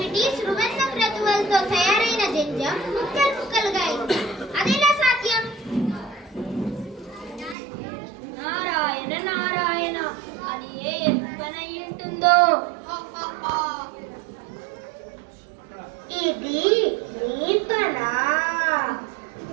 సువర్ణ క్రతువులతో తయారైన జంజం ముక్కలు ముక్కలుగా అయింది. అదెలా సాధ్యం? నారాయణ నారాయణ, అది ఏ పనై ఉంటుందో. ఇది నీ పనా?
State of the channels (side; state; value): left; drops out; at 7.6 s